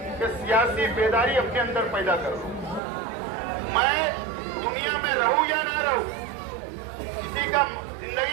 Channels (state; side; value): drops out; left; at 2.8 s